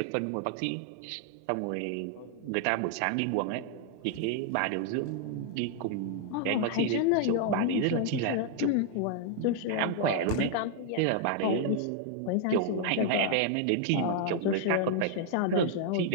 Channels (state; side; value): different; both; correlation 0.00